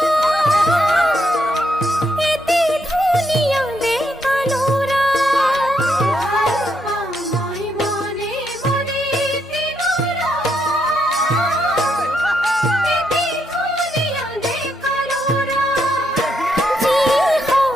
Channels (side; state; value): both; normal; correlation 0.78